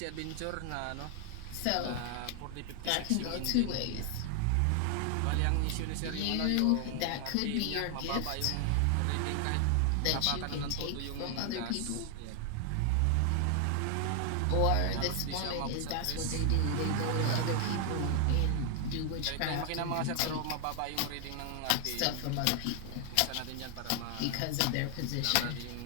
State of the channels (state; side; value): different; both; correlation 0.00